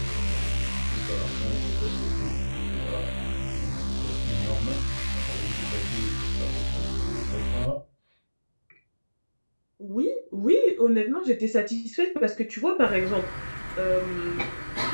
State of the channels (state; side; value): inverted; both; correlation -1.00